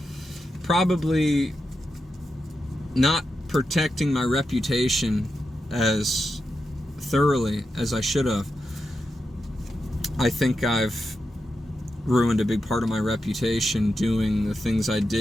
probably not protecting my reputation as thoroughly as I should have. I think I've ruined a big part of my reputation doing the things I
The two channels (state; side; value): normal; both; correlation 0.88